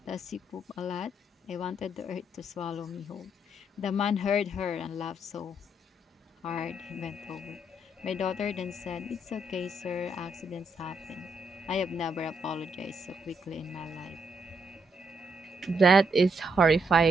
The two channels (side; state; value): both; normal; correlation 0.76